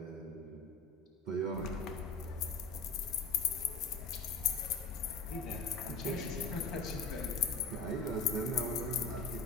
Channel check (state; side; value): quieter; right; 3.5 dB